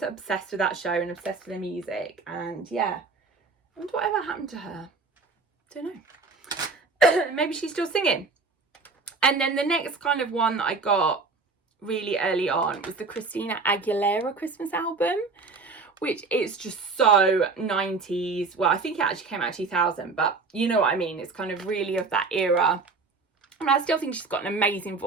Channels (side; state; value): left; quieter; 4.1 dB